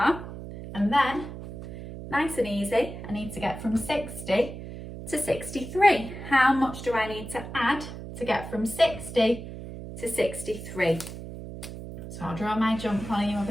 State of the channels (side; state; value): right; noise; hum, 10 dB below the sound